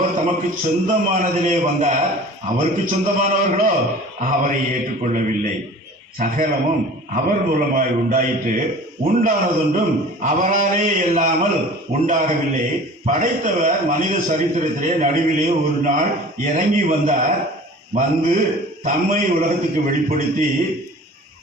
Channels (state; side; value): normal; both; correlation 0.43